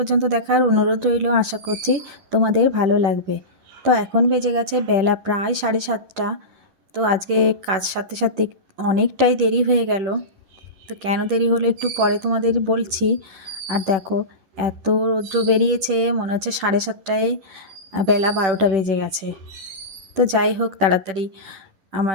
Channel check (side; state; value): left; late; 10 ms